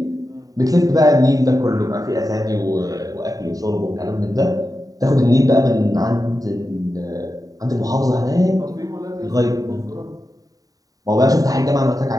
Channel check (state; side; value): late; left; 0.18 ms